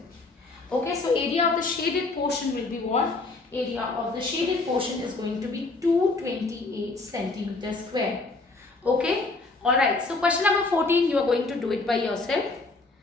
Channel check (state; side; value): quieter; right; 3.5 dB